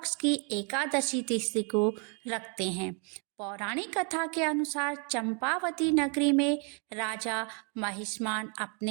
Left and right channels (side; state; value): left; quieter; 37.2 dB